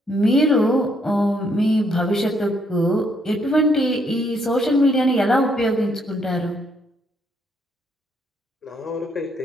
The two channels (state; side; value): normal; both; correlation 0.71